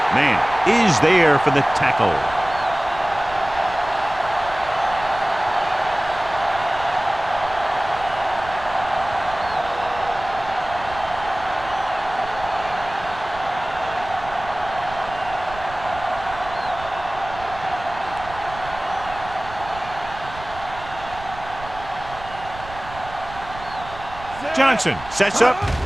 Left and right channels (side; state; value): right; noise; rumble, 15 dB below the sound